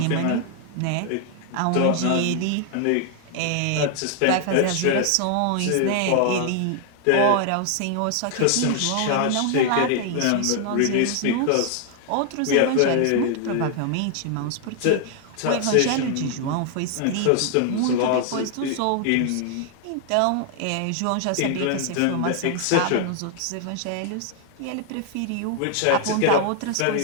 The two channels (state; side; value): different; both; correlation 0.00